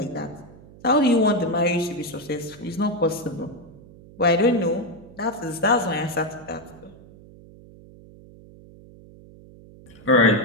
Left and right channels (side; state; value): right; noise; hum, 21 dB below the sound